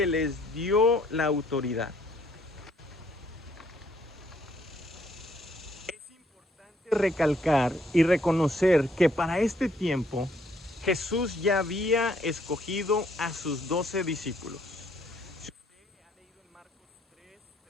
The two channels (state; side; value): normal; both; correlation 0.67